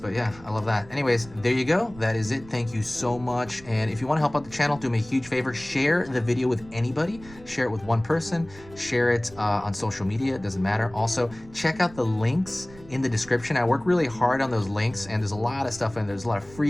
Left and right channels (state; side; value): noise; right; rumble, 20 dB below the sound